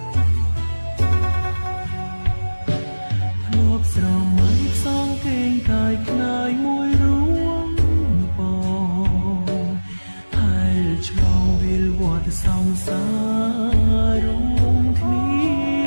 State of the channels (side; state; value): both; inverted; correlation -1.00